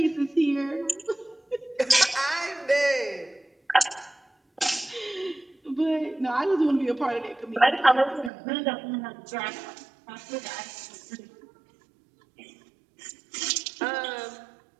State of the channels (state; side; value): drops out; left; at 8.3 s